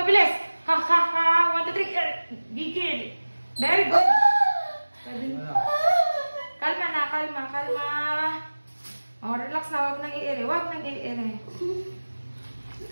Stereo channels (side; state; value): both; inverted; correlation -1.00